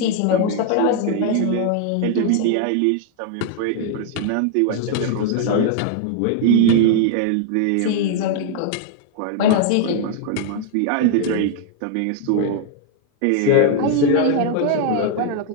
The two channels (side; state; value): both; different; correlation 0.00